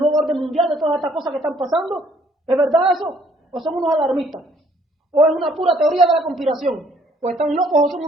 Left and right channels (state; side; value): normal; both; correlation 0.63